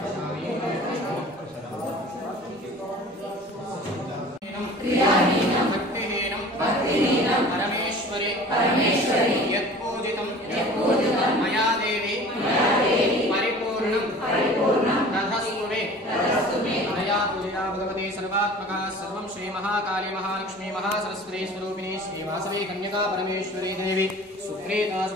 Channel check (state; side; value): normal; both; correlation 0.43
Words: परमेश्वरी यत्पूजितं मया देवी परिपूर्णं तथस्तु मे मया पूजिता भगवती सर्वात्मका सर्वं श्री महाकाली महालक्ष्मी महासरस्वती स्वरूपिणी श्री वासवी कन्यका परमेश्वरी देवी सुप्रीता